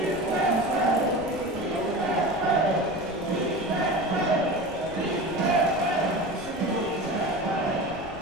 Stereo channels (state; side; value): noise; left; rumble, 16 dB below the sound